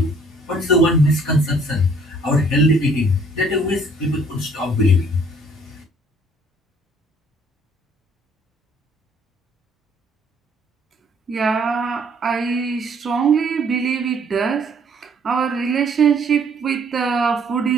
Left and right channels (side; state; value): both; normal; correlation 0.60